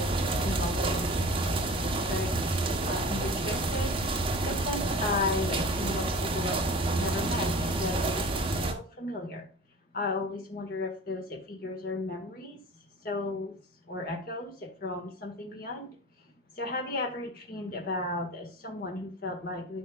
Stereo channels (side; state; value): both; normal; correlation 0.40